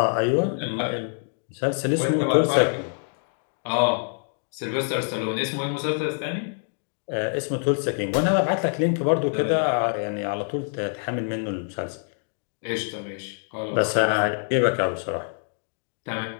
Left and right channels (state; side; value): silent; right; 61 dB below the other